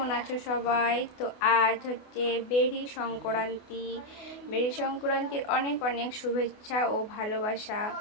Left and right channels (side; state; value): right; late; 28 ms